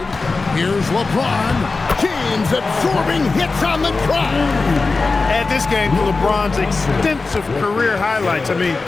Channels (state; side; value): quieter; right; 3.9 dB